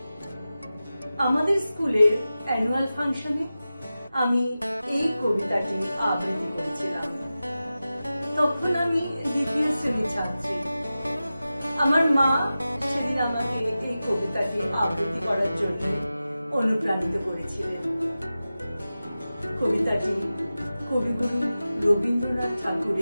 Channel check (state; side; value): inverted; both; correlation -0.94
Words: আমাদের স্কুলের অ্যানুয়াল ফাংশনে আমি এই কবিতাটি আবৃত্তি করেছিলাম। তখন আমি দ্বিতীয় শ্রেণীর ছাত্রী। আমার মা সেদিন আমাকে এই কবিতাটি আবৃত্তি করার জন্য অনুপ্রাণিত করেছিলেন। কবিতাটি কবিগুরু রবীন্দ্রনাথ